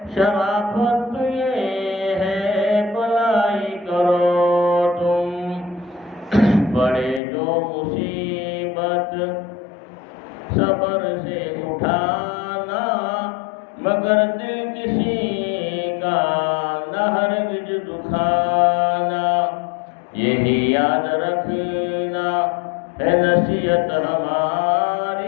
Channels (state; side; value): drops out; right; at 7.2 s